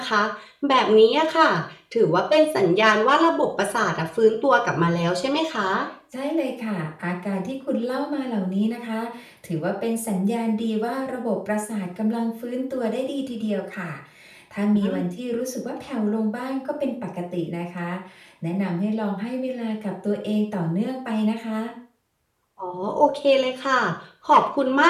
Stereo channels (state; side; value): identical; both; correlation 1.00